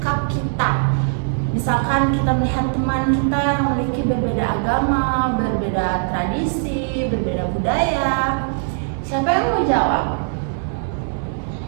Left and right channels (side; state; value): left; silent; digital silence